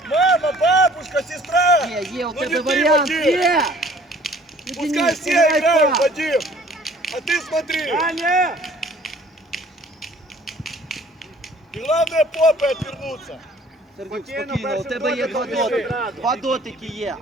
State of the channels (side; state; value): both; normal; correlation 0.54